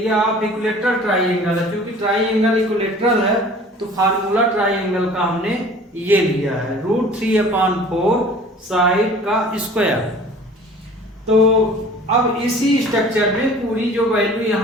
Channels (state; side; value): normal; both; correlation 0.47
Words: ऑफ इक्विलेटरल ट्राइंगल है, क्योंकि ट्राइंगल इक्विलेटरल है तो फार्मूला ट्राइंगल का हमने ये लिया है √3/4 साइड का स्क्वायर। तो अब इसी स्ट्रक्चर में पूरी जो वैल्यू